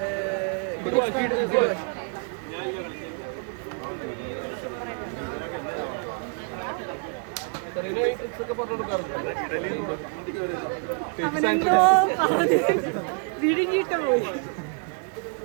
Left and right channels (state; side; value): quieter; left; 39.1 dB